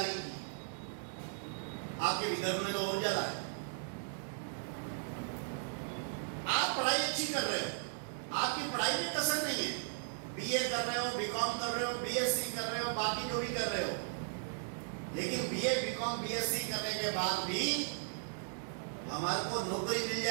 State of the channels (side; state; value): left; silent; digital silence